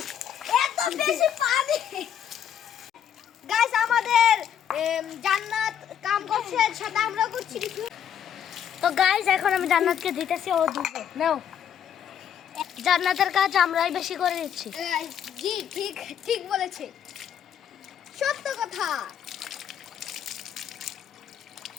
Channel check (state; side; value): quieter; right; 9.1 dB